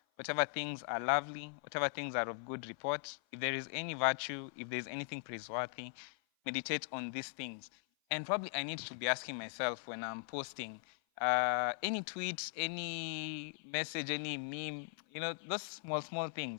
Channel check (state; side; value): silent; right; 51 dB below the other